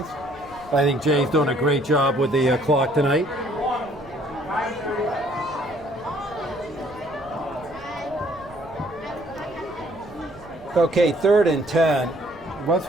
I think Jay's doing a great job with the clock tonight. Okay, 3rd and 10.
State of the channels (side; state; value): right; noise; rumble, 22 dB below the sound